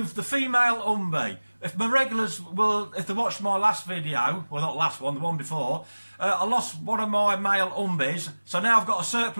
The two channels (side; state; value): both; inverted; correlation -1.00